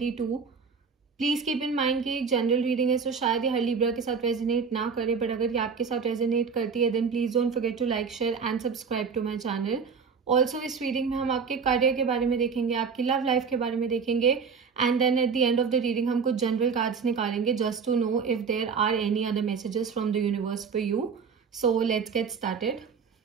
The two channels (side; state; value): left; quieter; 5.7 dB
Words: Please keep in mind कि एक जनरल रीडिंग है, सो शायद ये हर लिब्रा के साथ रेजोनेट ना करे, बट अगर ये आपके साथ रेजोनेट करती है then please don't forget to like, share and subscribe to my channel. Also इस रीडिंग में हम आपके करियर के बारे में देखेंगे, आपकी लव लाइफ के बारे में देखेंगे, and then at the end of the reading हम कुछ जनरल कार्ड्स निकालेंगे just to know if there are any other messages from the universe for you. So let's get started.